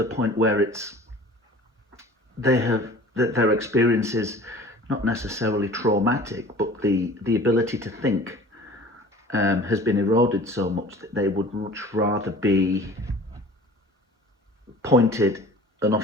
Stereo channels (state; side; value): normal; both; correlation 0.45